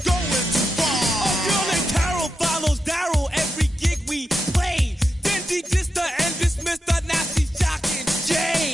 going too far. A girl named Carol follows Daryl every gig we play. Then she dissed her and dismissed her, now she's jocking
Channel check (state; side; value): normal; both; correlation 0.88